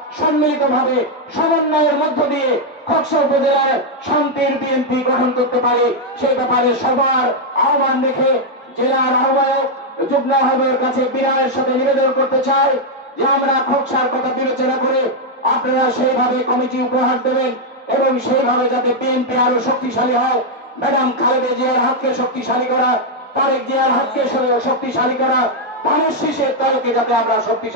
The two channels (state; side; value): normal; both; correlation 0.00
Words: সম্মিলিতভাবে সমন্বয়ের মধ্য দিয়ে খোকসা উপজেলার শান্তির বিএনপি গঠন করতে পারি, সেই ব্যাপারে সবার আহ্বান রেখে জেলার আহ্বায়ক, যুগ্ম আহ্বায়কের কাছে বিনয়ের সাথে নিবেদন করতে চাই যে আমরা খোকসার কথা বিবেচনা করে আপনারা সেইভাবে কমিটি উপহার দেবেন এবং সেইভাবে যাতে বিএনপি আরো শক্তিশালী হয়। ম্যাডাম খালেদা জিয়ার হাতকে শক্তিশালী করা, তারেক জিয়ার হাতকে শক্তিশালী করা, ধানের শীষের দলকে যাতে আমরা